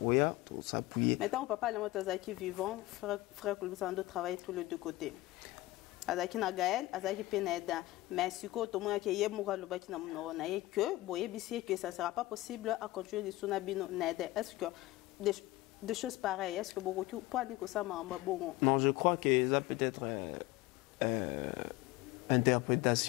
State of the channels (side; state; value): right; quieter; 18.5 dB